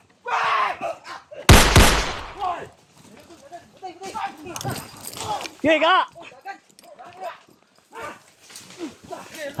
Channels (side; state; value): both; identical; correlation 1.00